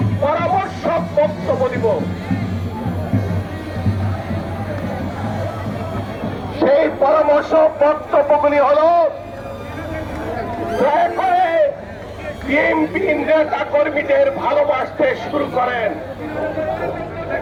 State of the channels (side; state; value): both; identical; correlation 1.00